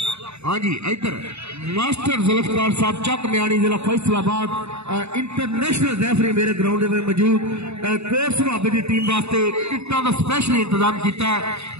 हाँ जी, इधर मास्टर जुल्फकार साहब चक म्याणी जिला फैसलाबाद इंटरनेशनल रेफरी मेरे ग्राउंड में मौजूद। कोट सुहाबे की टीम वास्ते टिकटों का स्पेशल इंतजाम किया है,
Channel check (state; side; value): late; left; 0.80 ms